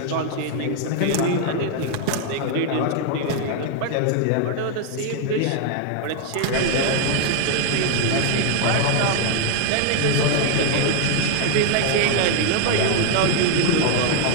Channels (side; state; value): both; different; correlation 0.00